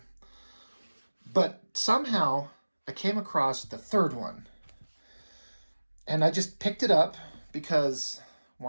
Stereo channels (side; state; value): both; inverted; correlation -1.00